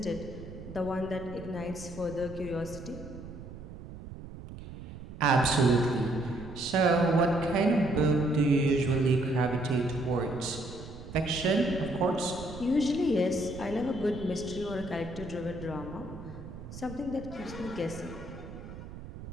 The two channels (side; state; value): right; noise; rumble, 13 dB below the sound